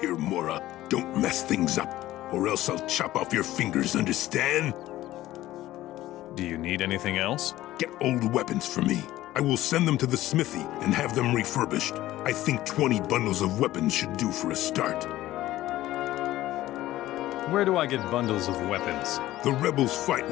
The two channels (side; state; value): right; quieter; 15.3 dB